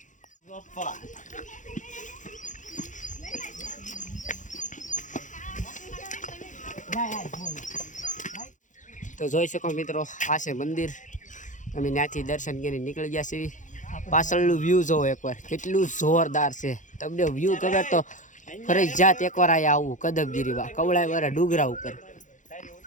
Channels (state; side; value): late; right; 0.36 ms